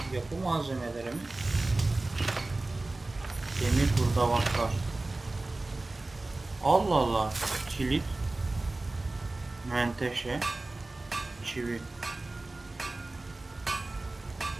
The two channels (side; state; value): left; quieter; 3.0 dB